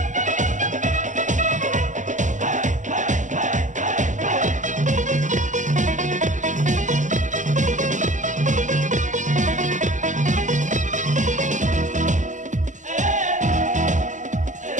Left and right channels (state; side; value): late; left; 0.36 ms